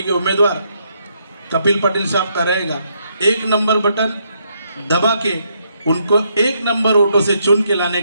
के उम्मीदवार कपिल पाटिल साहब का रहेगा। 1 नंबर बटन दबा के उनको 1 नंबर वोटों से चुन के लाने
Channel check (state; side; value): inverted; both; correlation -0.75